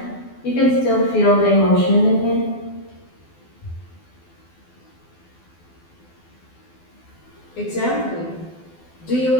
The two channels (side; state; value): right; late; 12 ms